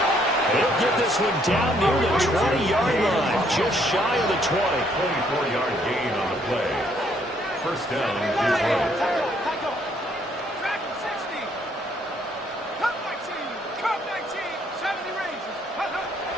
He'll get this one down near the 20-yard line, just shy of the 20. 24-yard gain on the play. First down is right.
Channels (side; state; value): both; normal; correlation 0.68